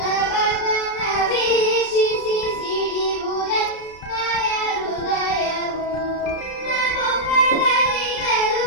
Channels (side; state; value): right; late; 32 ms